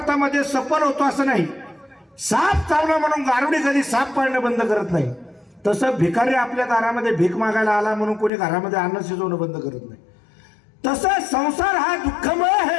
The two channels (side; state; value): right; drops out; at 8.3 s